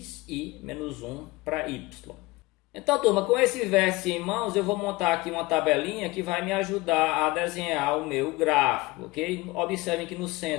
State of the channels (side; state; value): right; quieter; 21.9 dB